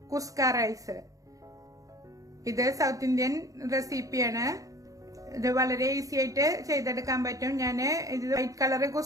കുസ്ക റൈസ്. ഇത് സൗത്ത് ഇന്ത്യൻ റെസിപ്പിയാണ്. ഇത് വളരെ ഈസി ആയിട്ട് ചെയ്തെടുക്കാൻ പറ്റും. ഞാൻ ഇത് വൈറ്റ് കളർ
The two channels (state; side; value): late; left; 0.16 ms